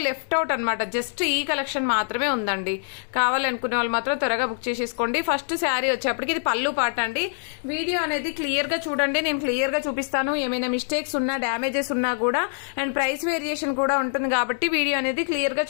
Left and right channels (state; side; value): silent; right; digital silence